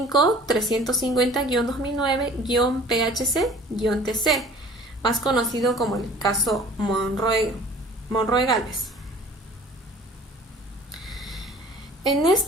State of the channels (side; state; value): both; normal; correlation 0.48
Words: más conocido como el caso Monroe-Galvez. En